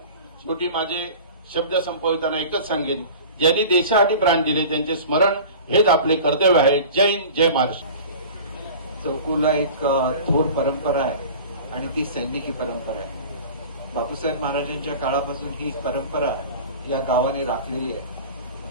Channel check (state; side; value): inverted; both; correlation -0.39